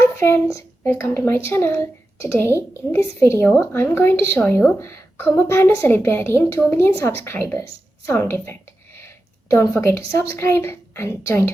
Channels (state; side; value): normal; both; correlation 0.91